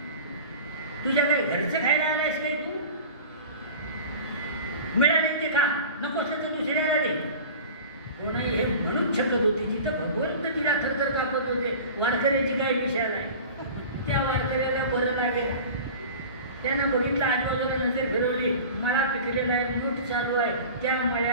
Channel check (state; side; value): inverted; both; correlation -0.38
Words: तुझ्याकडे घरचं खायला आलायस काय तू? मिळाले ते खा, नको असलं तर दुसऱ्याला दे. गोणाई हे म्हणून शकत होती, जिथं भगवंत तिला थरथर कापत होते, वारकऱ्याची काय विषय नाही. त्या वारकऱ्याला बरं लागेल, त्यानं बघितलं, आजूबाजूला नजर फिरवली, मळा पिकलेला आहे, मूठ चालू आहे, त्या